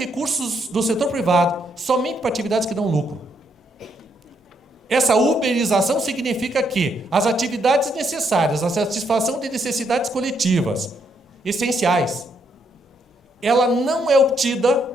do setor privado somente para atividades que dão lucro. Essa uberização significa que as atividades necessárias à satisfação de necessidades coletivas essenciais, ela não é obtida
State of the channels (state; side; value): normal; both; correlation 0.75